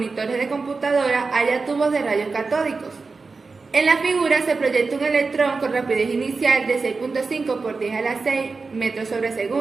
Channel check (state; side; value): quieter; left; 4.2 dB